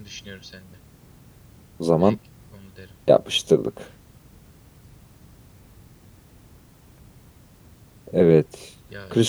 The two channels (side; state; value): both; identical; correlation 1.00